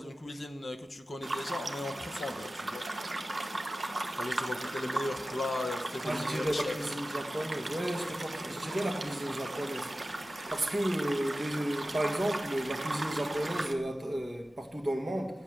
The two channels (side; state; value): both; normal; correlation 0.95